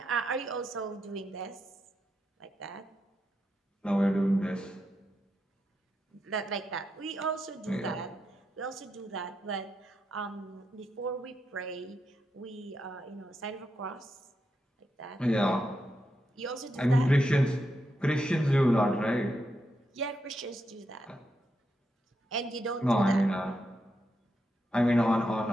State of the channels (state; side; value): normal; both; correlation 0.84